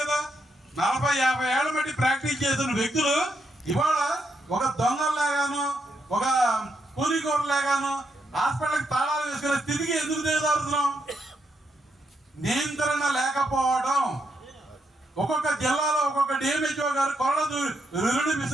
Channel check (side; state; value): both; normal; correlation 0.80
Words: కదా. 40-50 ఏళ్ల బట్టి ప్రాక్టీస్ చేస్తున్న వ్యక్తులు ఇవాళ ఒక దొంగల్లాగాను, ఒక కూలికోరులాగాను హాస్పిటల్కి తాళాలు వేసుకునే స్థితికి ఎందుకు దిగజారుతున్నాం? నియంత్రణ లేకపోవడం. ఒక్కొక్క జిల్లాలో ఒక్కొక్క డిఎంహెచ్ఓ గారు కొరడు